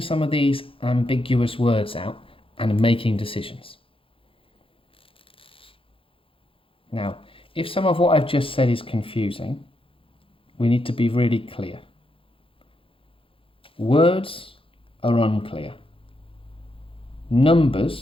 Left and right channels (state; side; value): late; right; 0.26 ms